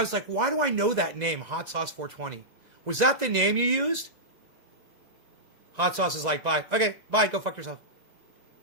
was like, why do I know that name, Hot Sauce 420? Was that the name you used? Hot Sauce is like, bye. Okay, bye. Go fuck yourself.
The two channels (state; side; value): late; left; 2.0 ms